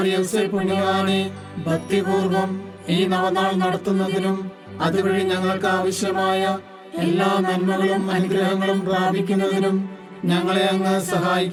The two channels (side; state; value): both; identical; correlation 1.00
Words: പുണ്യവാനെ ഭക്തിപൂർവം ഈ നവനാൾ നടത്തുന്നതിനും അതുവഴി ഞങ്ങൾക്ക് ആവശ്യമായ എല്ലാ നന്മകളും അനുഗ്രഹങ്ങളും പ്രാപിക്കുന്നതിനും ഞങ്ങളെ അങ്ങ്